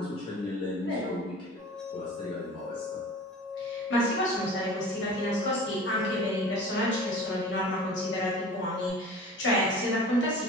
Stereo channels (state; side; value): normal; both; correlation 0.40